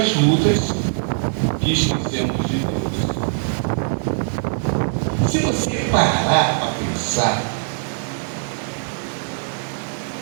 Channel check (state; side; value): silent; left; 65 dB below the other